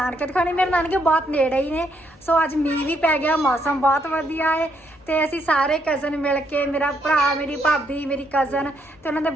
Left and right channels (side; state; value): both; normal; correlation 0.74